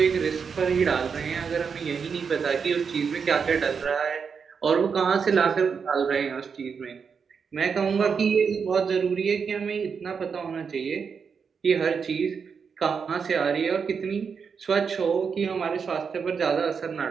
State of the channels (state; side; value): quieter; left; 6.0 dB